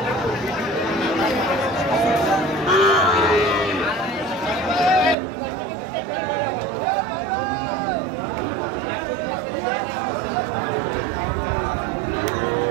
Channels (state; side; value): drops out; left; at 5.2 s